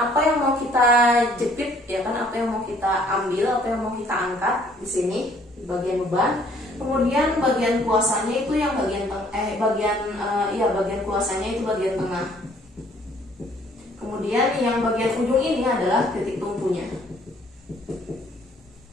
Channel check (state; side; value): normal; both; correlation 0.60